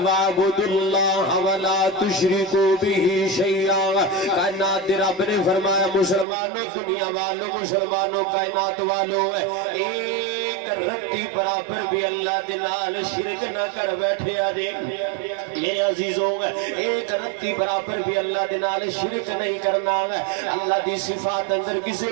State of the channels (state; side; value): drops out; left; at 6.2 s